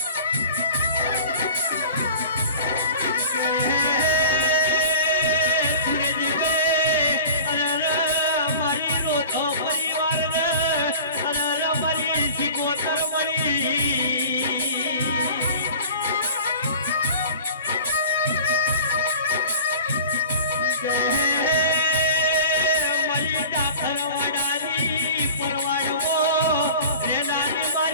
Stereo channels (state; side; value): inverted; both; correlation -0.41